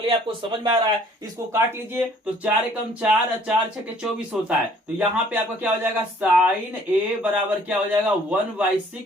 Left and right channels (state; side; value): normal; both; correlation 0.58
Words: आपको समझ में आ रहा है, इसको काट लीजिए, तो 4 एकम 4, 4 छके 24 होता है। तो यहाँ पे आपका क्या हो जाएगा, साइन ए बराबर क्या हो जाएगा